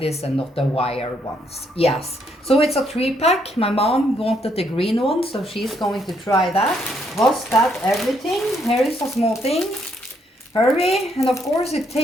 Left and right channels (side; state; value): both; normal; correlation 0.73